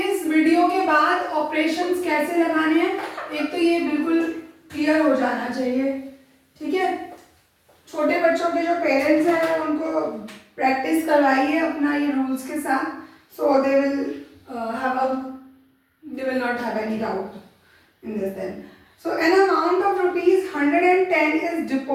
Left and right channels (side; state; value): both; identical; correlation 1.00